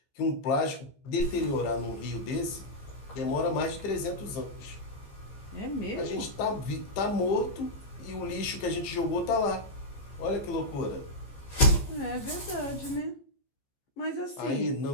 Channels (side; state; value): right; late; 15 ms